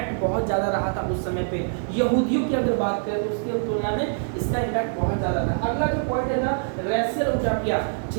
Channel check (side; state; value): left; silent; digital silence